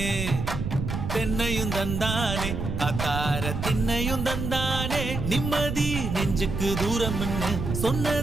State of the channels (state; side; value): noise; right; rumble, 4 dB below the sound